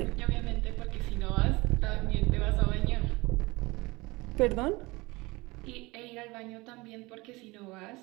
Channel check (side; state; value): left; quieter; 22.9 dB